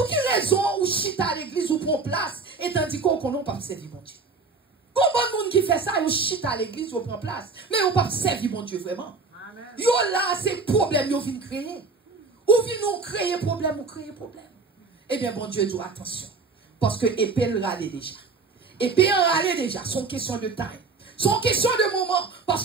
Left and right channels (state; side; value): quieter; left; 4.3 dB